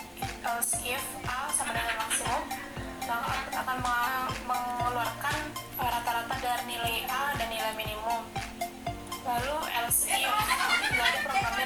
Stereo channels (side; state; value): both; identical; correlation 1.00